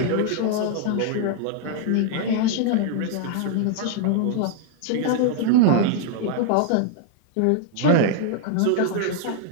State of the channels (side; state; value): both; different; correlation 0.00